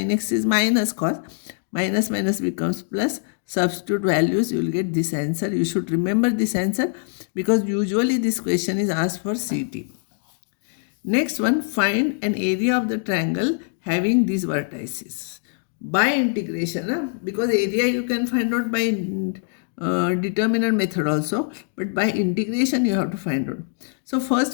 x is minus cos. Minus minus becomes plus. Substitute values, you will get this answer. You should remember this answer because usually this question is asked for CT. Next one, find an area of the triangle having these vertices. By integration, because area you can find out by determinant method also, but by integration you have to find out. So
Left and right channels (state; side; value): silent; right; 63 dB below the other